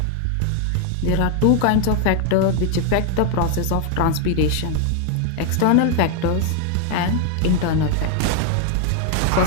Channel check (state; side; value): different; both; correlation 0.00